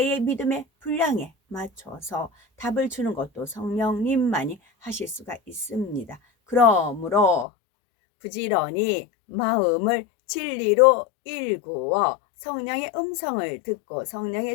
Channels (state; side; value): drops out; right; at 7.5 s